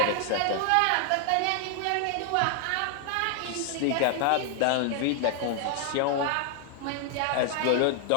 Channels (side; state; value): both; different; correlation 0.00